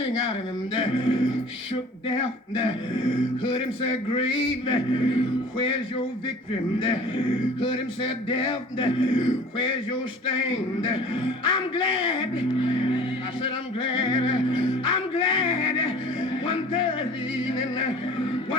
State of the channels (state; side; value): normal; both; correlation 0.45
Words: out of him, shook death, heard him say, grave, where's your victory? Heard him say, death, where's your sting? I'm glad, I said I'm glad, one Thursday evening,